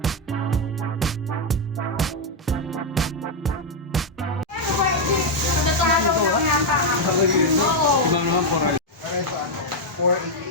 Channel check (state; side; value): normal; both; correlation 0.01